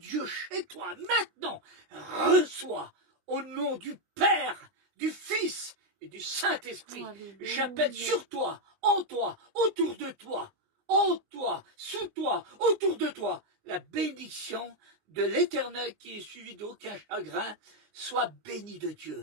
chez toi, maintenant, reçois au nom du Père, du Fils et du Saint-Esprit. Alléluia. J'appelle sur toi, en toi, autour de toi, en toi, sous toi, autour de toi, la bénédiction de l'Éternel qui est suivie d'aucun chagrin. Sois béni de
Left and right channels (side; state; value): left; late; 20 ms